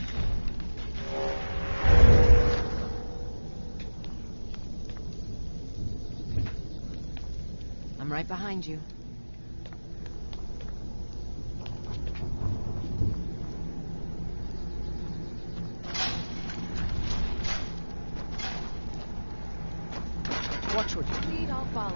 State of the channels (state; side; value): inverted; both; correlation -1.00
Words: I'm right behind you. Watch what you lead, I'll